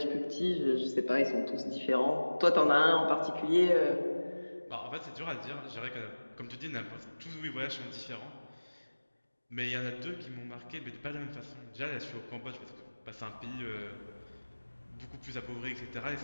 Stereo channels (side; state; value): both; inverted; correlation -1.00